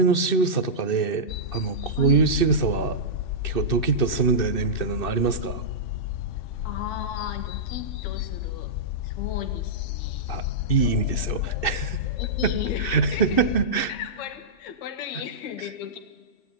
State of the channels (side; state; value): right; late; 2.6 ms